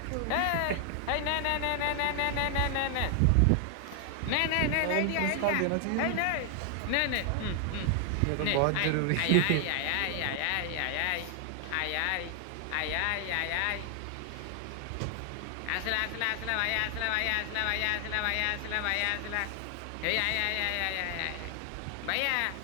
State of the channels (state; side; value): different; both; correlation 0.00